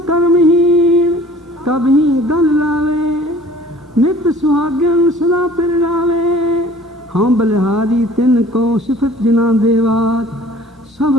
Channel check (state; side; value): normal; both; correlation 0.50